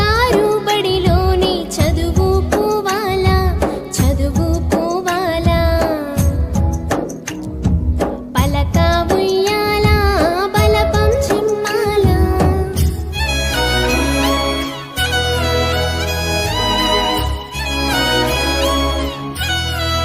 బడిలోని చదువుకోవాలా, చదువుకోవాలా. పలక ఉయ్యాల బలపం చిమ్మాలా.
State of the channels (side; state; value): both; identical; correlation 1.00